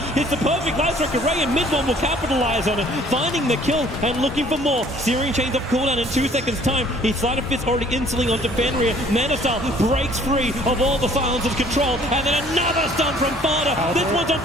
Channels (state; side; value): normal; both; correlation 0.56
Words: hits the perfect light strike array, and mid one will capitalize on it, finding the kill and looking for more. Searing Chains off cooldown in 2 seconds' time. He's Sleight of Fist already insuling onto Fenrir. Manasal breaks free of all the Silence's control, and then another stun from Fada. This one's on